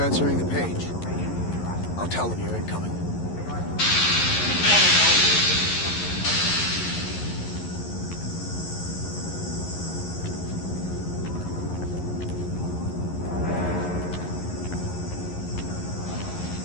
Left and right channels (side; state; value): right; late; 11 ms